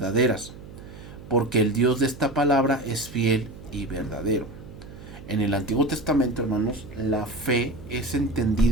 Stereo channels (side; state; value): right; noise; hum, 16 dB below the sound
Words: porque el Dios de esta palabra es fiel y verdadero. En el Antiguo Testamento, hermanos, la fe es